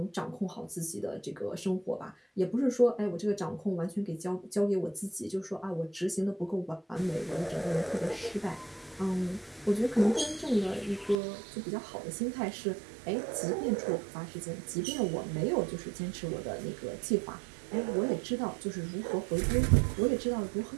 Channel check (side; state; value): left; drops out; at 11.2 s